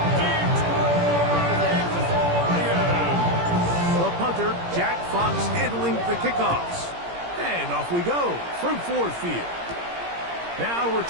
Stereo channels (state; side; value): late; left; 17 ms